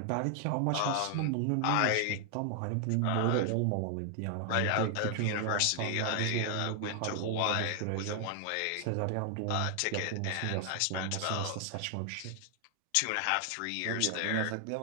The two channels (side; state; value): both; different; correlation 0.00